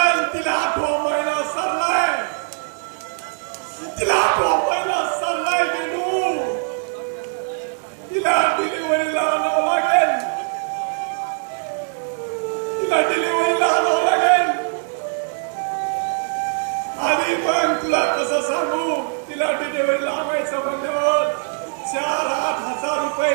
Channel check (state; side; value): silent; left; 58 dB below the other